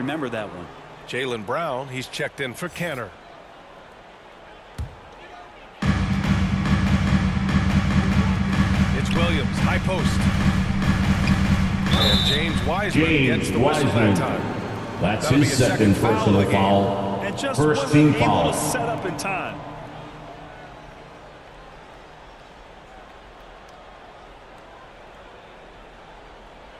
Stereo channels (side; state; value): both; identical; correlation 1.00